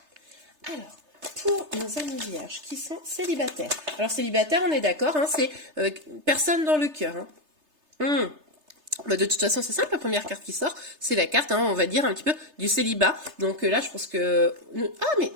Alors pour nos amis vierges qui sont célibataires. Alors célibataire on est d'accord, hein, c'est personne dans le cœur. Hein. Bah, de toute façon c'est simple, la première carte qui sort c'est la carte, hein, on va dire un petit peu du célibat. Donc là je pense que... Ah mais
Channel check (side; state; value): left; late; 3.3 ms